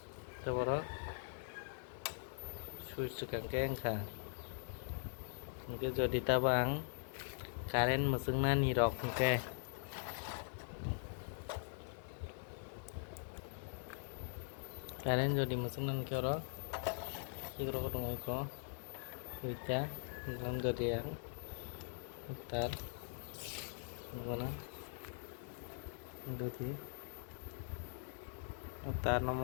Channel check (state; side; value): silent; right; digital silence